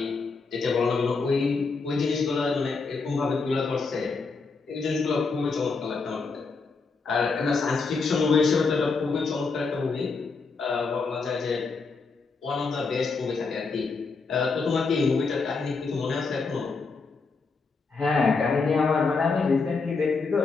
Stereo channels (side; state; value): right; quieter; 4.4 dB